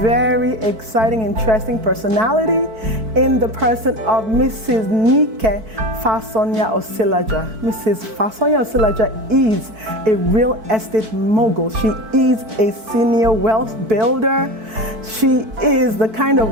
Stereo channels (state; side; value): late; left; 4.5 ms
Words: exciting, interesting personality in the person of Mrs. Nike Fasonya Osilaja. Mrs. Fasonya Osilaja is a real estate mogul. She is a senior wealth builder. She is the kind of